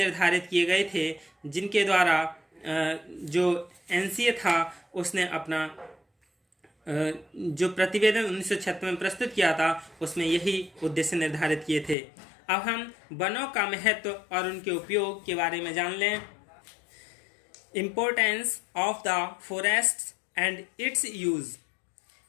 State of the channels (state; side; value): drops out; right; at 12.0 s